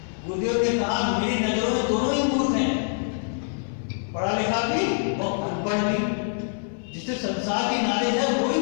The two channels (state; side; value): silent; right; 62 dB below the other